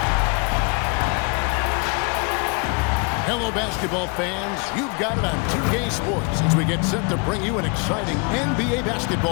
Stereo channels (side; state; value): right; quieter; 32.7 dB